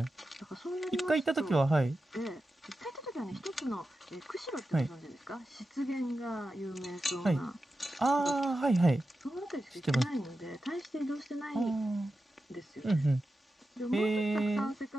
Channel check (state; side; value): normal; both; correlation 0.91